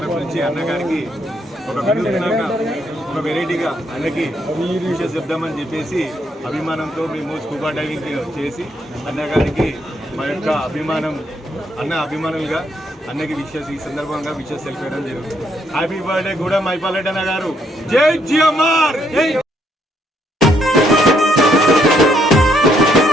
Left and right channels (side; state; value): both; normal; correlation 0.72